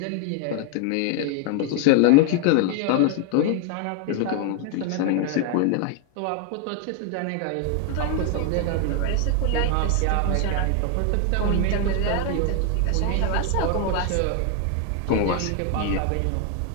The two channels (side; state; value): both; different; correlation 0.00